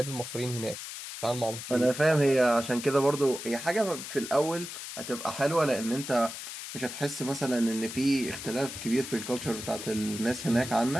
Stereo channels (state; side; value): noise; left; hiss, 9 dB below the sound